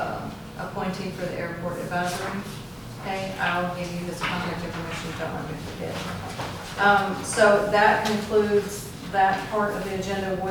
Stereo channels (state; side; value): identical; both; correlation 1.00